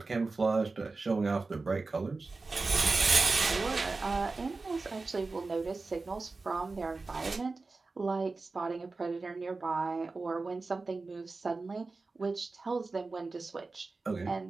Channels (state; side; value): quieter; left; 3.8 dB